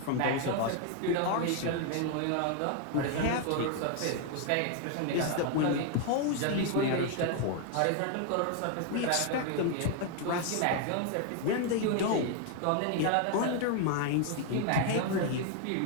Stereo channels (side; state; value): both; different; correlation 0.00